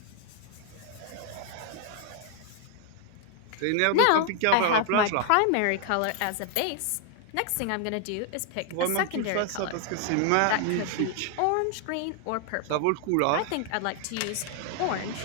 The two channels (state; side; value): different; both; correlation 0.00